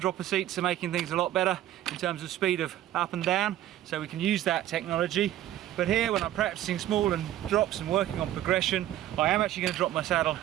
seats are making things a lot better in terms of speed of up and down, so we can use that technology. But here, when I'm practicing small and drops and working on progression, I am actually going to drop my saddle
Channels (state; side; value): quieter; left; 13.0 dB